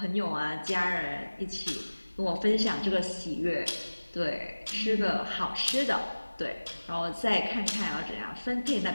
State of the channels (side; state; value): both; inverted; correlation -1.00